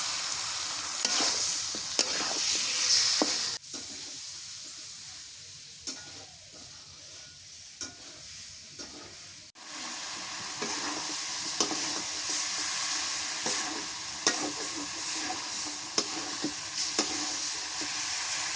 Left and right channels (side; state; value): both; identical; correlation 1.00